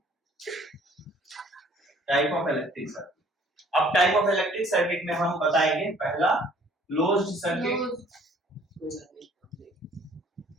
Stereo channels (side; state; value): both; normal; correlation 0.56